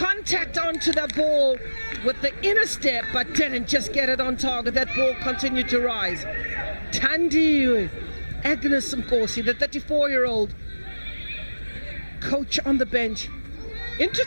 onto the ball with the inner step, but didn't just get it on target. That ball continued to rise. Tandi Agnes Nkosi, the 34-year-old coach on the bench.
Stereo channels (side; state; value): both; inverted; correlation -1.00